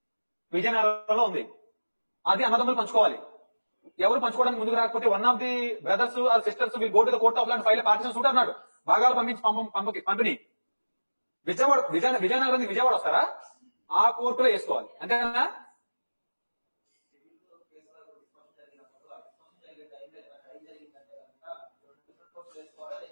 విజయనగరంలో ఉంది, అది అన్నదమ్ములు పంచుకోవాలి. ఎవరు పంచుకోవడానికి ముందుకు రాకపోతే one of the brothers or sisters will go to the court of law and file partition suit అన్నాడు. భాగాలు పంపించి పంపిణీ విజయనగరం విజయవాడ వస్తారా? ఆ కోర్టులో వేసుకోవాలి, అంతేనా?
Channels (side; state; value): both; inverted; correlation -1.00